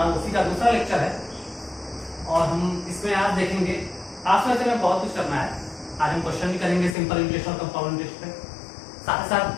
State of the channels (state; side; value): drops out; right; at 7.0 s